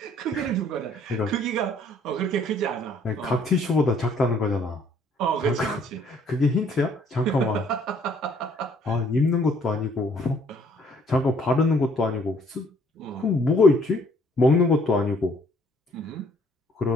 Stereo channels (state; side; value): normal; both; correlation 0.62